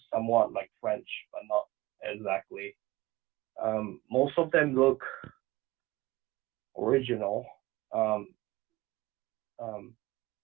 somewhat like French, but not exactly. Most of them look original.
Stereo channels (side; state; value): left; quieter; 19.6 dB